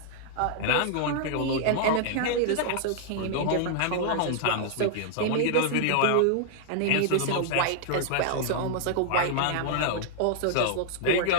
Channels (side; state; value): both; different; correlation -0.01